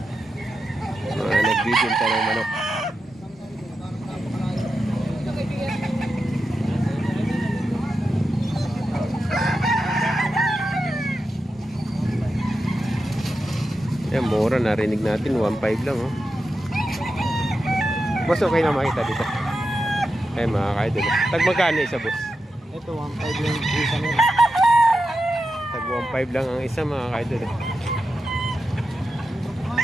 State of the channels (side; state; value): both; normal; correlation 0.89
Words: Mga nagbibinta ng manok. Yan, mura, narinig natin 1.5 lang oh. Boss, okay na makita dito. Ay mga kaidol. Tag magkano isa, boss? Ito 1.5 lang isa nila. Tag 1.5 lang ang isa mga kaidol.